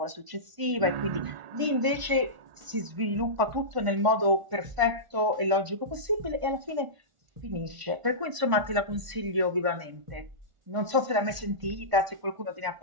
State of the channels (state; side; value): late; left; 1.0 ms